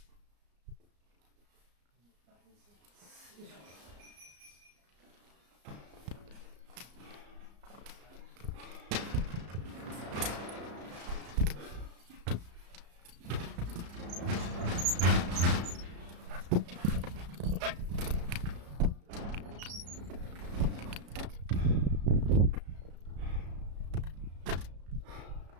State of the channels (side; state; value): left; late; 34 ms